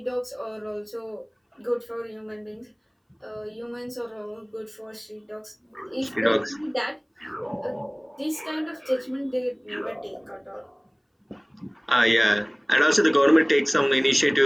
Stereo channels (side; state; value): both; identical; correlation 1.00